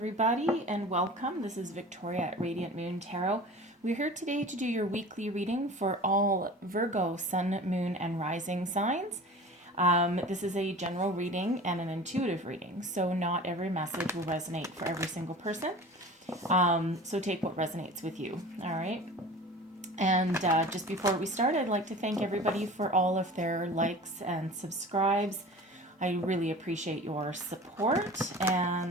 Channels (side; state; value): both; normal; correlation 0.39